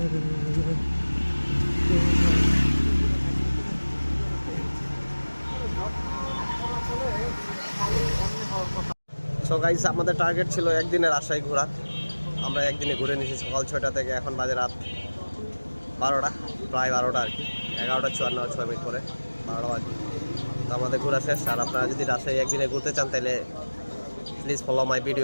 সো গাইস, আমাদের টার্গেট ছিল একদিনে রাজশাহী ঘোরা। আমরা একদিনে ঘুরে নিয়েছি সকাল 6টা থেকে, এখন বাজে রাত 12টা, প্রায় 12টা আর কি, 11:54 করে 12টা বাজে। তো আমাদের ঘোরা শেষ। আর আপনারা যদি রাজশাহী একদিনে ঘুরতে চান তাহলে প্লিজ ফলো মাই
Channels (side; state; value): both; inverted; correlation -1.00